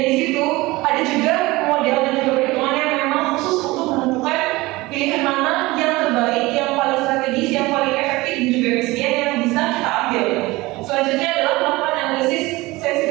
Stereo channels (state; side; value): quieter; left; 20.8 dB